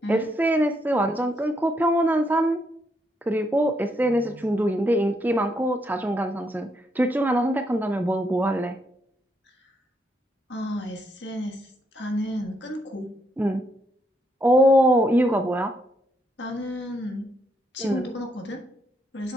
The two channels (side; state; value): both; normal; correlation 0.76